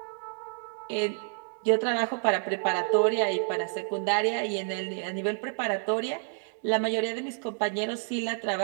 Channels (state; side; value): silent; left; digital silence